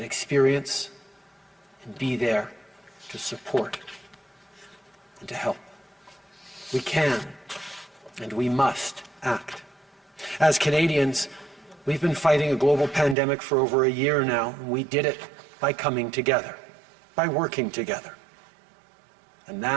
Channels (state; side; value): drops out; left; at 13.2 s